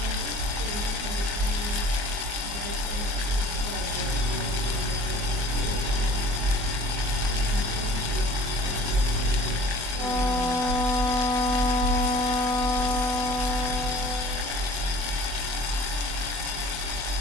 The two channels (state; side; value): late; left; 24 ms